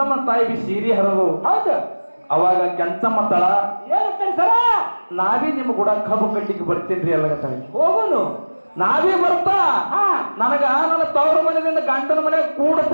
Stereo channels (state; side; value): inverted; both; correlation -1.00